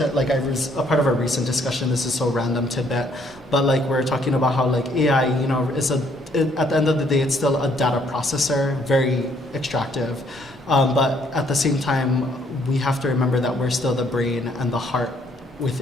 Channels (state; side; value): normal; both; correlation 0.66